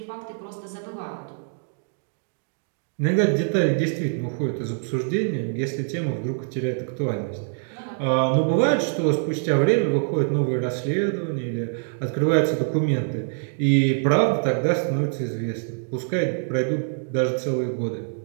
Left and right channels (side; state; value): left; silent; 62 dB below the other